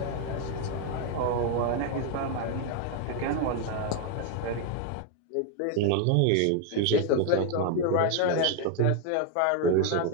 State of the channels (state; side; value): different; both; correlation 0.01